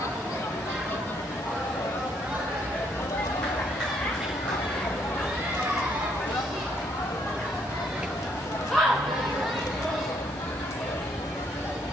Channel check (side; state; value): both; normal; correlation 0.70